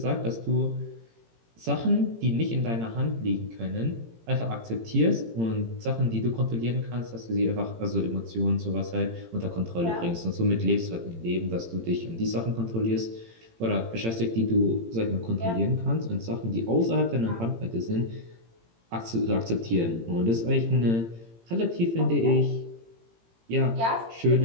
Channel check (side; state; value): left; late; 18 ms